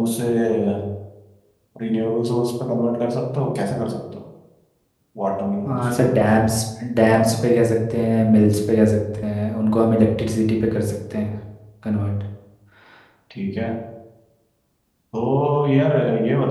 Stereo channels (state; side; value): identical; both; correlation 1.00